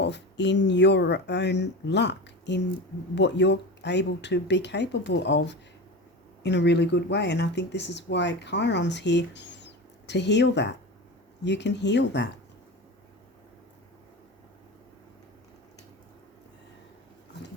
in your own luck, in what you're able to be capable of in a really good way. And I think this is why Chiron's here, to heal that. You can heal that. I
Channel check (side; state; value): both; normal; correlation 0.27